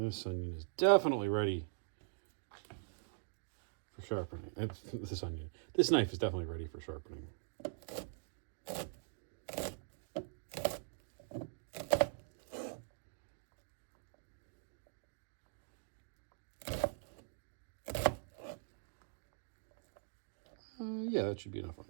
onion is definitely ready for sharpening. This knife is definitely ready for sharpening. Yeah, that should be enough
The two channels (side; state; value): left; silent; digital silence